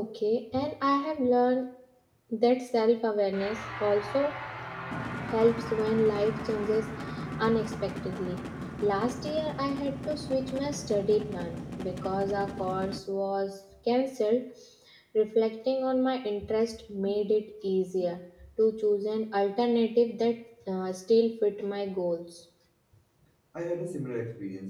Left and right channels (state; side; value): identical; both; correlation 1.00